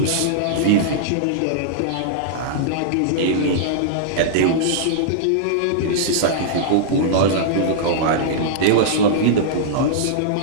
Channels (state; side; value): different; both; correlation -0.02